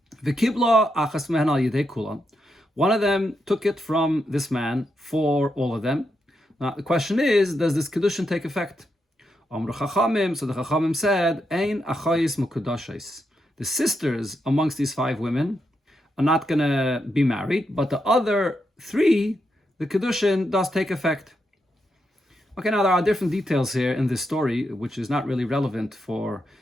One of them took it from this man for all of them. Now the question is, does this kedushin take effect? So the Chachamim said, Ein achayis mukadashis. The sisters amongst these 5 women are not going to be married, but the other 3, the kedushin does take effect. Okay, now there are different details here in this story, which is not really relevant for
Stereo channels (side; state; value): both; normal; correlation 0.83